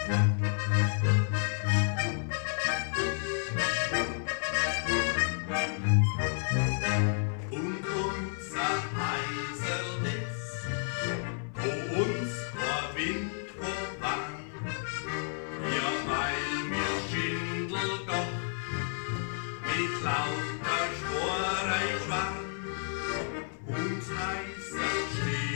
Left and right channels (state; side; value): silent; right; 57 dB below the other